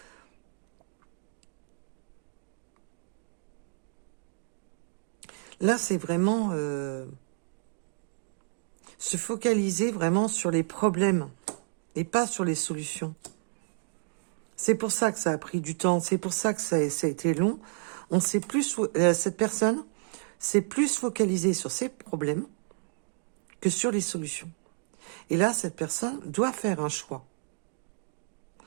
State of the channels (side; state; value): left; silent; digital silence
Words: Là, c'est vraiment se focaliser vraiment sur les problèmes et pas sur les solutions. C'est pour ça que ça a pris du temps, c'est pour ça que ça a été long. Cette personne s'est plus focalisée sur ses problèmes que sur les solutions. Et là, cette personne doit faire un choix,